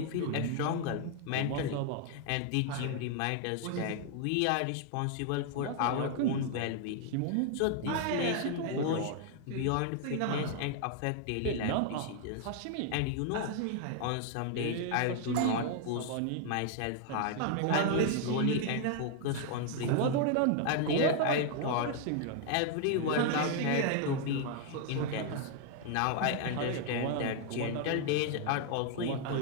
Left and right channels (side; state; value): both; different; correlation 0.00